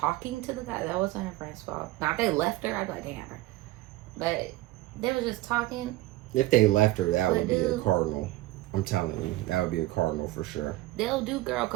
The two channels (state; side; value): quieter; left; 17.6 dB